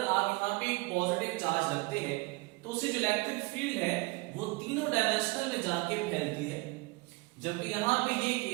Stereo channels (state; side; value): quieter; left; 24.8 dB